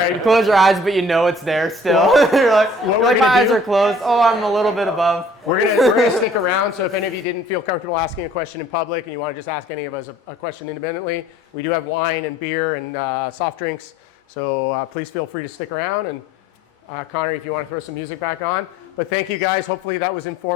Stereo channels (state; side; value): normal; both; correlation 0.55